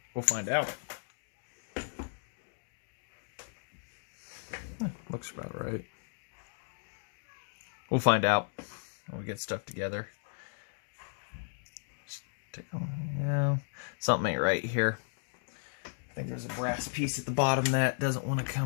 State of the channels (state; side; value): silent; right; digital silence